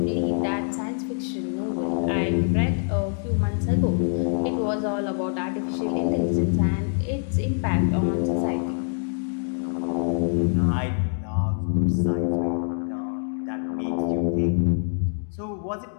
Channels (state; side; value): silent; right; digital silence